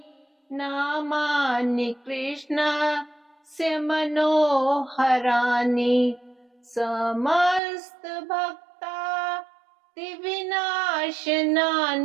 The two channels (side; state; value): left; drops out; at 7.6 s